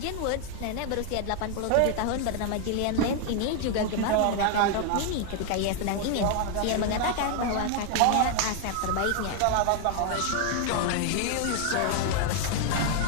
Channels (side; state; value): both; different; correlation 0.00